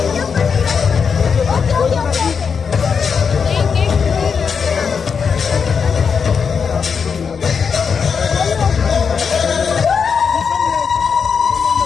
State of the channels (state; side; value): quieter; right; 6.1 dB